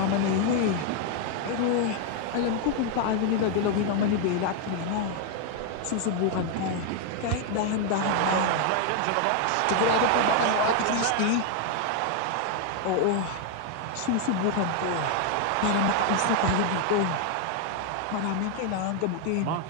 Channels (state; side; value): different; both; correlation 0.00